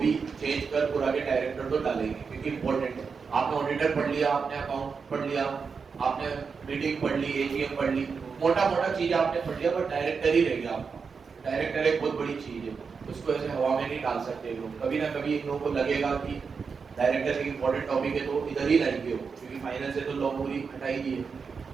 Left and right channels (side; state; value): left; quieter; 5.4 dB